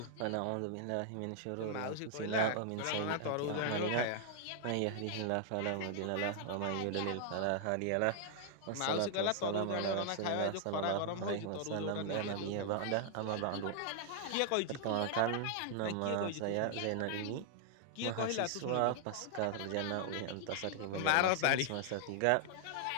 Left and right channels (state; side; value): different; both; correlation 0.00